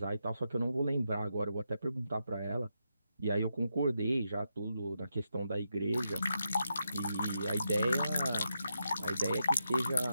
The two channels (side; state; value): both; inverted; correlation -0.84